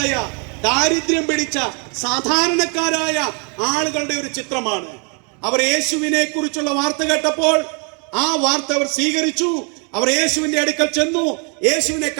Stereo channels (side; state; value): left; quieter; 37.0 dB